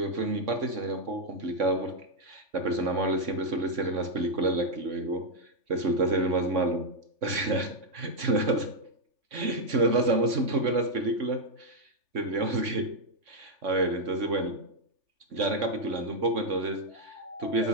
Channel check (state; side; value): late; left; 3.6 ms